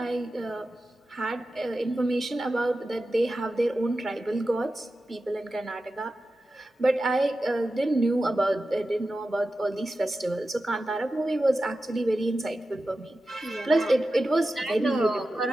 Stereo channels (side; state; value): both; normal; correlation 0.93